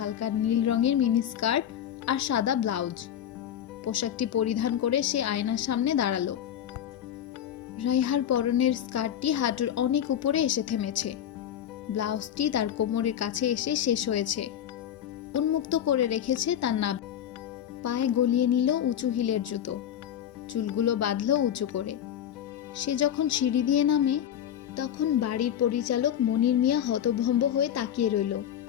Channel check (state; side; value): quieter; right; 10.1 dB